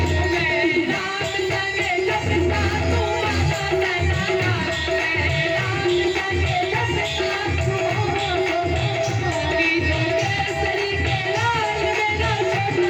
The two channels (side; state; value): both; identical; correlation 1.00